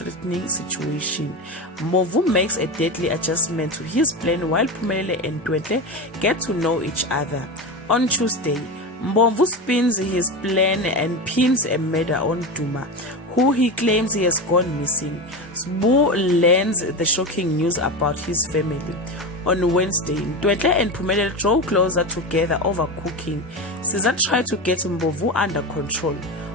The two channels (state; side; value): normal; both; correlation 0.20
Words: situation. Mbovu makes a deadly adjustment to his plan while Phumelele and Ntwentle get to know each other. On Tuesday, Mbovu spins his plan and pins a murder on Duma, who he claims he has gone missing. Sbu learns the shocking news about his family. On Wednesday, Ntwentle and Phumelele draw closer together over cooking. Caesar tried to get Mbovu under control.